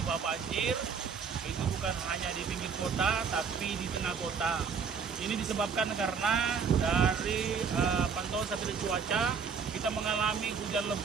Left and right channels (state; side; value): quieter; left; 6.0 dB